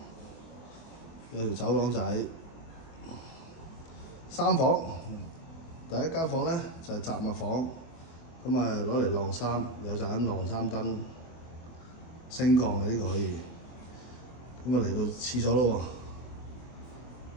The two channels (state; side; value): late; right; 24 ms